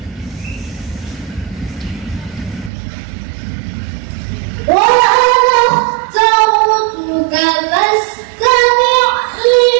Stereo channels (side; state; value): left; drops out; at 2.7 s